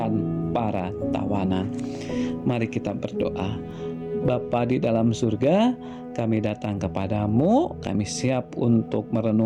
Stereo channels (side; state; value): both; identical; correlation 1.00